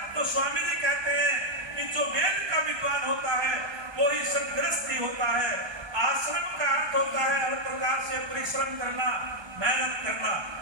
तो स्वामी जी कहते हैं कि जो वेद का विद्वान होता है वो ही सदगृहस्थी होता है। आश्रम का अर्थ होता है हर प्रकार से परिश्रम करना, मेहनत करना।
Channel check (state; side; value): late; left; 1.3 ms